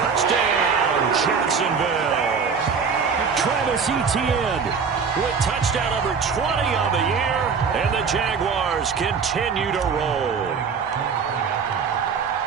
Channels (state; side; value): quieter; left; 5.9 dB